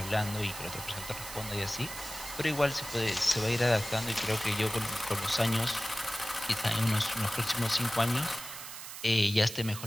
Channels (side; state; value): right; noise; hiss, 10 dB below the sound